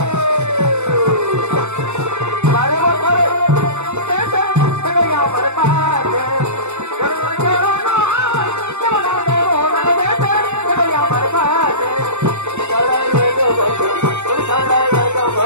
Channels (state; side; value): late; left; 0.83 ms